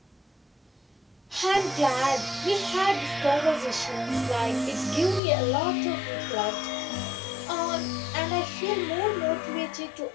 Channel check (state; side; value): drops out; right; at 5.2 s